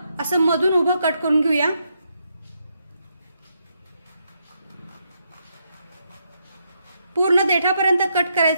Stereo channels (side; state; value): both; inverted; correlation -0.79